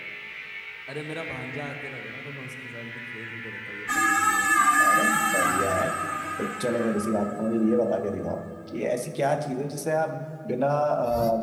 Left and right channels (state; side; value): identical; both; correlation 1.00